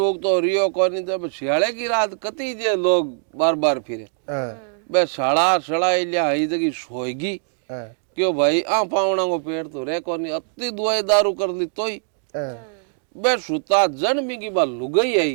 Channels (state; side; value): silent; left; digital silence